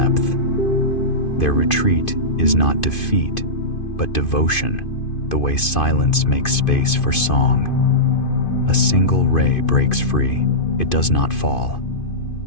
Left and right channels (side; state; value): right; late; 2.5 ms